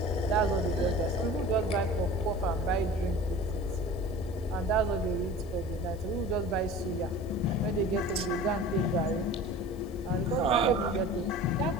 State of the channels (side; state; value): left; noise; hiss, 27 dB below the sound